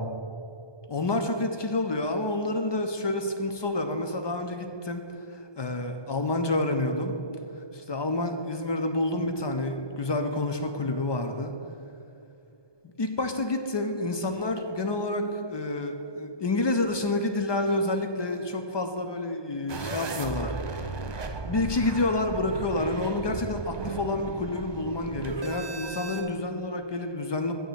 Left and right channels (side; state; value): right; late; 1.2 ms